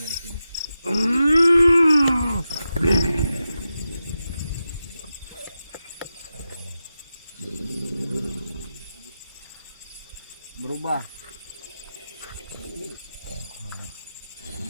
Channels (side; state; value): both; inverted; correlation -0.91